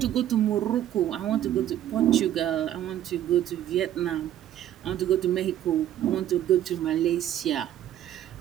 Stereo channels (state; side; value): quieter; left; 11.7 dB